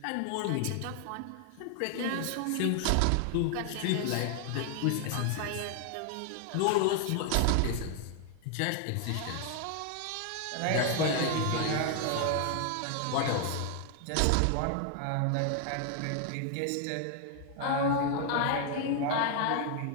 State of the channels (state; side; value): different; both; correlation 0.00